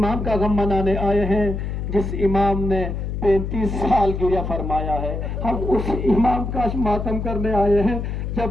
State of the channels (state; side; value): noise; left; hum, 4 dB below the sound